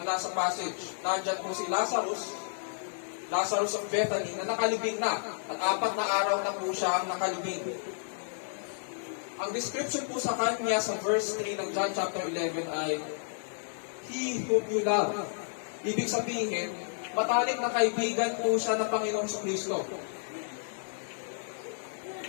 nasa passage. Nandyan po si Lazarus of Bethany na nakalibing na. At 4 na araw na po siya ang nakalibing. Ang description po sa kanya sa verse 3 ng John chapter 11 ay, He whom you love. Ibig sabihin, matalik na kaibigan po siya ng Panginoong Kristo.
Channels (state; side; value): silent; right; digital silence